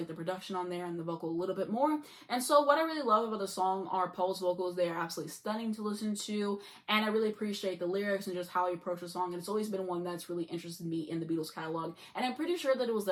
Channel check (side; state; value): both; identical; correlation 1.00